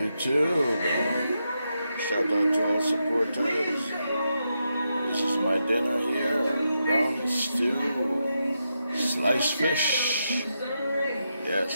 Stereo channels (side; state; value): both; inverted; correlation -0.85